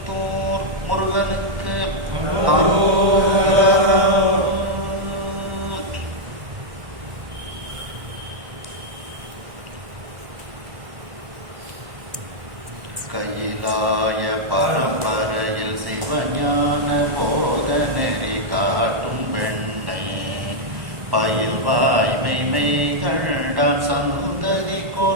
முருகனுக்கு கையிலாய பரம்பரையில் சிவஞான போத நெறி காட்டும் பெண்ணை பயில் வாய்மை கண்டான் சந்ததி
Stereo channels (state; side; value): late; left; 1.1 ms